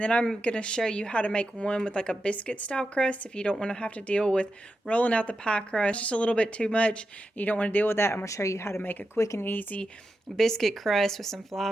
I'm going to show you how to make one with like a biscuit style crust if you don't want to have to deal with rolling out the pie crust just a little bit too much. You don't want to deal with that. I'm going to show you how to make a quick and easy biscuit crust with some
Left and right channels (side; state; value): both; normal; correlation 0.89